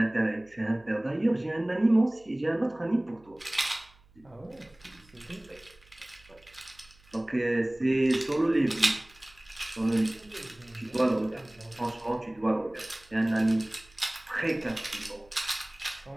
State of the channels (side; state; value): right; noise; hum, 29 dB below the sound